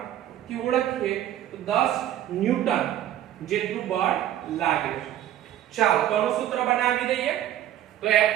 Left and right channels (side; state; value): left; quieter; 12.1 dB